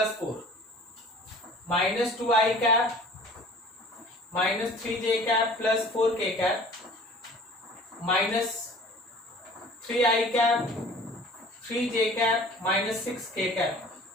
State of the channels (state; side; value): normal; both; correlation 0.47